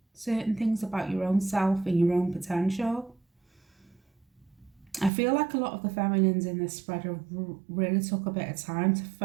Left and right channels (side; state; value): left; drops out; at 5.1 s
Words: certain things about your own self and your own potential. I feel like a lot of the feminines in this spread have really took a bit of time to